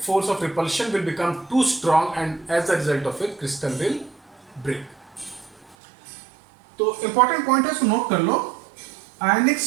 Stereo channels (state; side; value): drops out; left; at 5.8 s